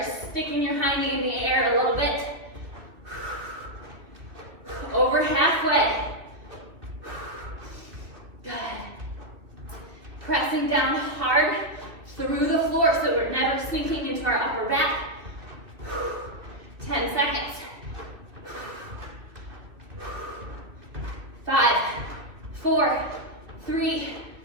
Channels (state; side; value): late; left; 2.6 ms